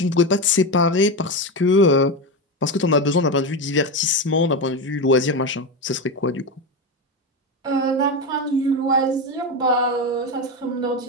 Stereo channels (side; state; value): both; normal; correlation 0.16